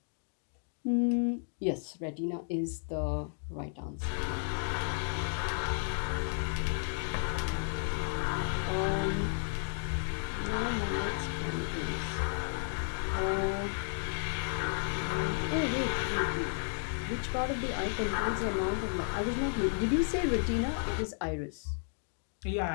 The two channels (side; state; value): right; silent; digital silence